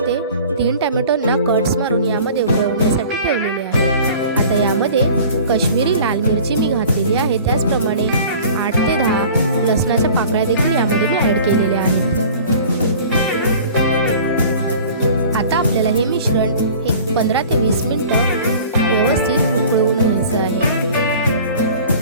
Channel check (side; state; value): both; inverted; correlation -0.44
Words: 3 टोमॅटोंना कट्स मारून यामध्ये उकळवण्यासाठी ठेवलेले आहे। आता यामध्ये काश्मीरी लाल मिरची मी घातलेली आहे, त्याचप्रमाणे 8 ते 10 लसणाच्या पाकळ्या देखील यामध्ये मी ॲड केलेल्या आहेत। आता आपल्याला हे मिश्रण एक 15 ते 20 मिनिटं व्यवस्थित उकळवून घ्यायचं आहे।